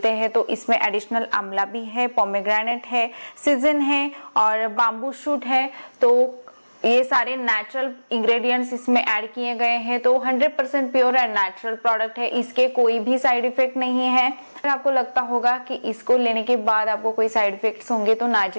हैं। तो इसमें एडिशनल आंवला भी है, पोमेग्रेनेट है, सीजन है और बाम्बू शूट है। तो ये सारे नेचुरल इंग्रेडिएंट्स इसमें ऐड किए गए हैं। तो 100% प्योर एंड नेचुरल प्रोडक्ट है। इसके कोई भी साइड इफेक्ट नहीं है। अगर आपको लगता होगा कि इसको लेने के बाद आपको कोई साइड इफेक्ट्स होंगे, तो ना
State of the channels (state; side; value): inverted; both; correlation -1.00